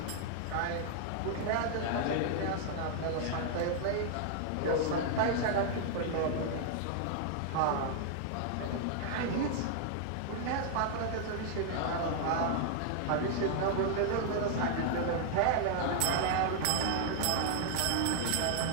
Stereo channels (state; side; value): different; both; correlation 0.00